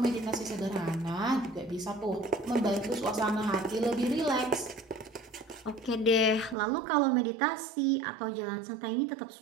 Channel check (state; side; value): drops out; left; at 6.6 s